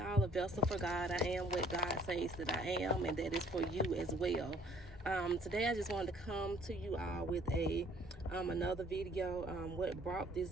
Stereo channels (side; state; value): both; normal; correlation 0.57